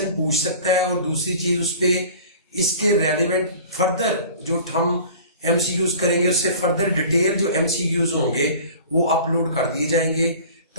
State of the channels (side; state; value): both; inverted; correlation -0.43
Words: पूछ सकता है। और दूसरी चीज, उस पर इसके रेलिवेंट फर्दर जो हम एमसीक्यूज करेंगे उससे फर्दर डिटेल जो एमसीक्यूज होंगे वो अपलोड कर दिए जाएंगे,